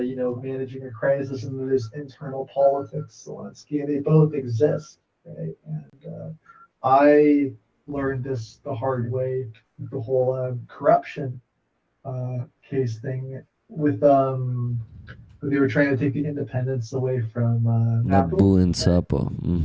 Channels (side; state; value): both; identical; correlation 1.00